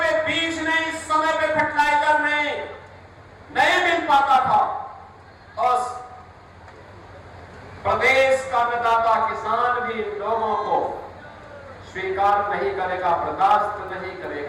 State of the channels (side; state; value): both; identical; correlation 1.00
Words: बीज नहीं, समय पे फर्टिलाइजर नहीं मिल पाता था। और प्रदेश का अन्नदाता किसान भी इन लोगों को स्वीकार नहीं करेगा, बर्दाश्त नहीं